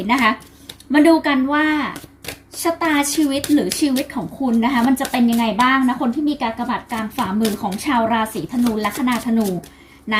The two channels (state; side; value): identical; both; correlation 1.00